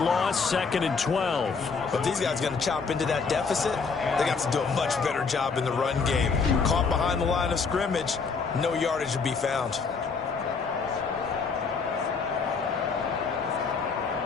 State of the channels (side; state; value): right; quieter; 5.1 dB